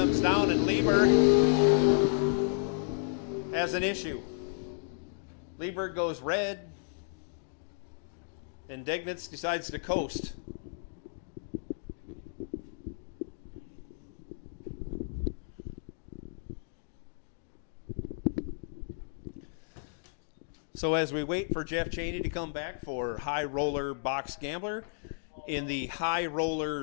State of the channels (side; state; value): right; silent; digital silence